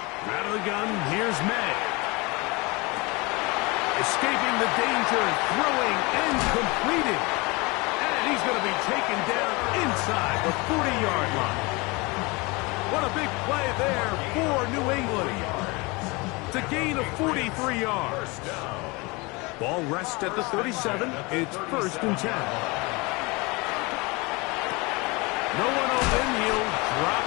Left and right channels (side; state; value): right; quieter; 25.9 dB